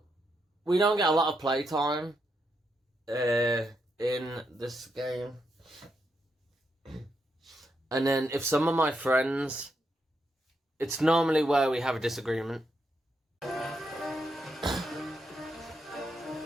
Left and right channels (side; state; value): both; normal; correlation 0.81